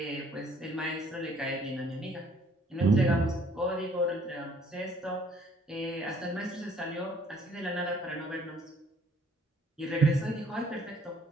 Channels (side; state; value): both; normal; correlation 0.60